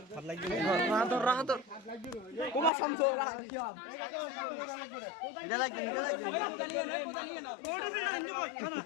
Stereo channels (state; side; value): drops out; right; at 2.7 s